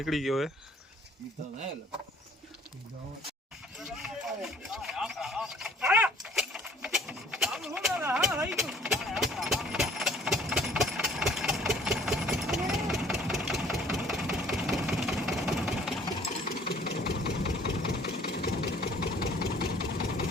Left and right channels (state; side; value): normal; both; correlation 0.56